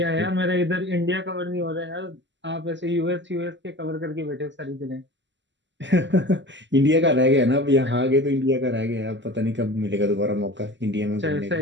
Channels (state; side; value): late; left; 0.53 ms